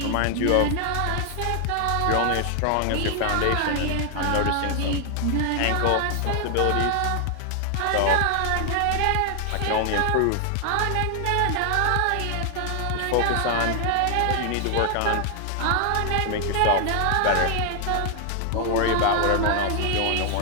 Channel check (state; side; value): different; both; correlation 0.00